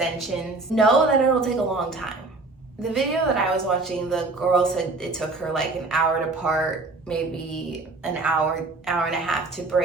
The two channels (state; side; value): quieter; left; 3.4 dB